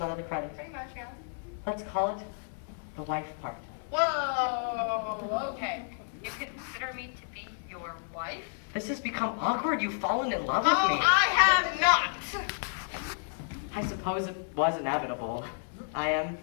of the credit. Pretty much, yeah. Let's call it the wife part. Whoa, okay. You consider me to be your wife? This has become awkward. You've fallen in love with Oh, me. I have not. I suppose it was inevitable. I am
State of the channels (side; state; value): right; silent; digital silence